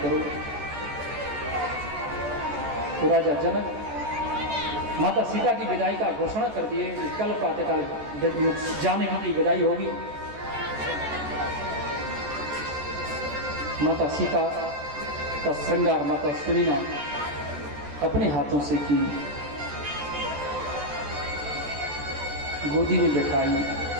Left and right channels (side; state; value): left; late; 14 ms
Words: तो राजा जनक माता सीता की विदाई का घोषणा कर दिए, कल प्रातःकाल जानकी की विदाई होगी। माता सीता का श्रृंगार माता सुनीना अपने हाथों से की, गोदी में बैठाई,